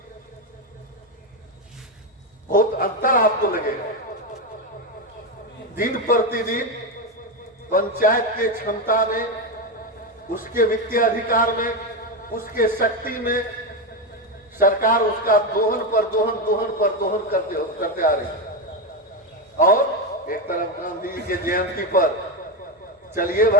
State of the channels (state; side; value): normal; both; correlation 0.11